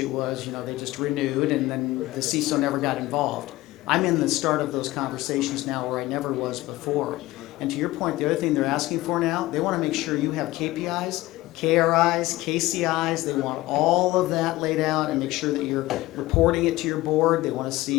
was, they just renewed, and then the CISO never got involved. I'm in the start of those conversations now where I never was before. And to your point, the other thing they're asking for now, they want to make sure you have KPIs, KRIs, KCIs. They want all of that laid out and make sure that you're reporting it to your board. They want to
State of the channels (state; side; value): quieter; right; 18.1 dB